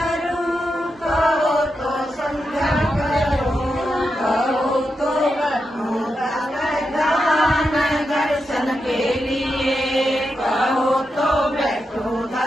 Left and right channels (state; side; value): normal; both; correlation 0.87